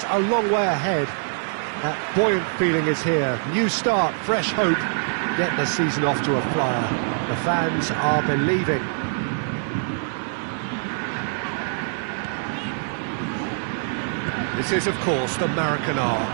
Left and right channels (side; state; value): left; silent; digital silence